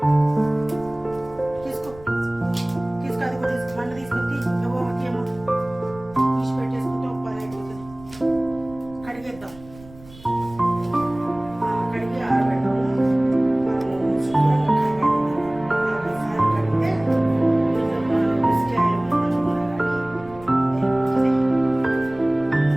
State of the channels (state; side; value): noise; right; rumble, 21 dB below the sound